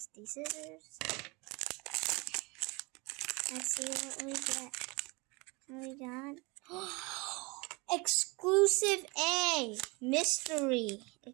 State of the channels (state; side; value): quieter; left; 27.2 dB